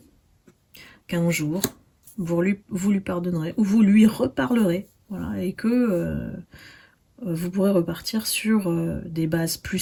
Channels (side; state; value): both; identical; correlation 1.00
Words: qu'un jour, vous lui pardonnerez, ou vous lui reparlerez, voilà, et que vous pourrez repartir sur des bases plus